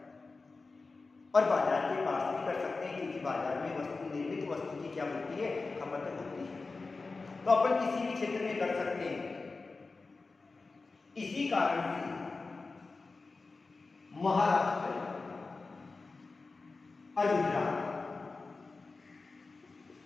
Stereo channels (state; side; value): quieter; right; 3.9 dB